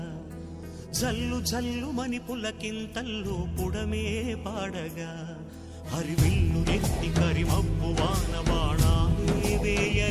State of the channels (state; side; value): identical; both; correlation 1.00